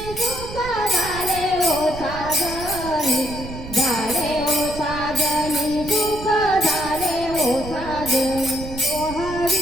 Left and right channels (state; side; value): noise; right; rumble, 11 dB below the sound